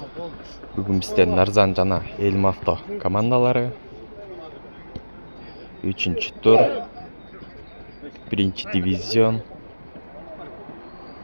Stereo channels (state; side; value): inverted; both; correlation -1.00